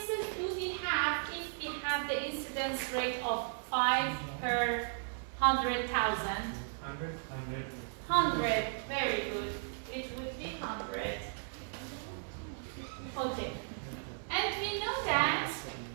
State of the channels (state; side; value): silent; left; digital silence